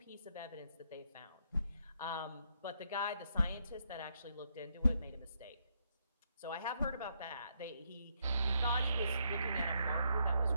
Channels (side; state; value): both; inverted; correlation -0.75